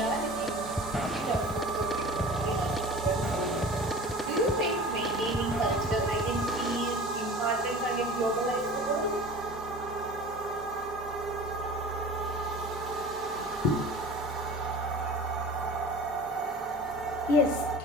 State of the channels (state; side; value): normal; both; correlation 0.39